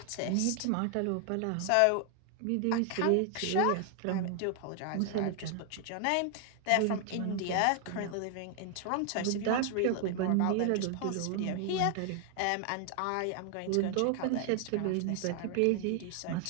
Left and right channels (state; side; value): different; both; correlation 0.00